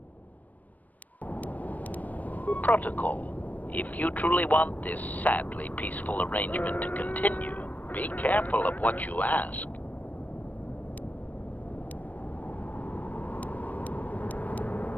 Protocol. If you truly want this sadly peaceful arrangement to continue, be careful of what you ask.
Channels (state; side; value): late; right; 0.077 ms